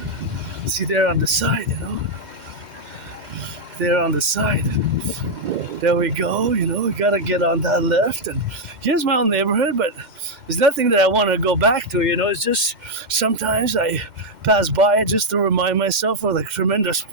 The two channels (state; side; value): late; left; 2.1 ms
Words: on the side, There on the side, there we go. We gotta get on that left, and here's my own neighborhood. But there's nothing that I want to go back to. It's just sometimes I pass by it just to remind myself of the tremendous